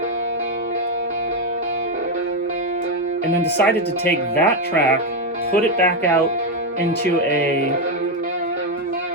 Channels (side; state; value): both; normal; correlation 0.06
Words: and then decided to take that track, put it back out into a